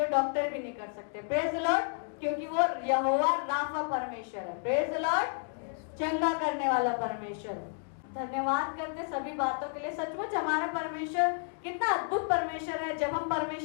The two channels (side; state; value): right; silent; digital silence